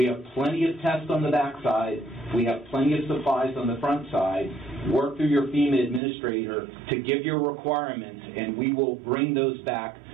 have plenty of tests on the backside. We have plenty of supplies on the front side. Work through your FEMA administrator to give your requirements, and we will bring those back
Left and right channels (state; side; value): drops out; left; at 6.0 s